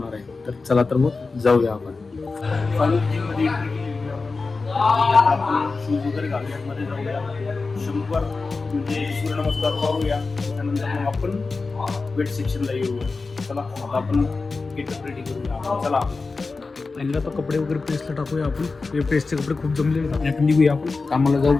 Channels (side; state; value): right; quieter; 4.0 dB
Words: आहे. तर चला तर मग जाऊया आपण. शूज वगैरे घालूया, मध्ये जाऊया 100 म्हणजे सूर्यनमस्कार करूया. त्यानंतर मग आपण वेट सेक्शनला येऊया. चला आता आपण गेटअप रेडी करूया. चला पहिला तर कपडे वगैरे प्रेसला टाकूया आपण. हे प्रेसचे कपडे खूप जमलेले आहेत. आपण निघूया, आपण कामाला